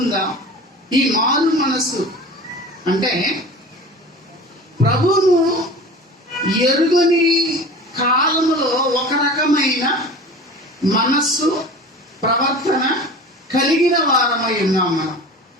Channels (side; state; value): both; normal; correlation 0.37